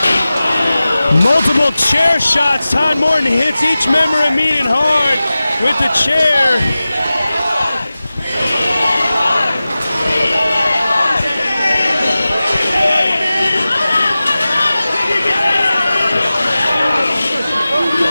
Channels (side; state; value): both; inverted; correlation -0.96